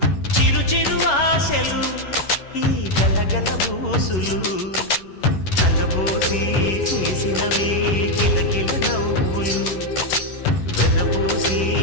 చిరు చిరు ఆశలు ఈ గలగల ఊసులు కలబోసి చేసినవి కిలకిల నవ్వులు వెలబోసి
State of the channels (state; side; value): late; right; 11 ms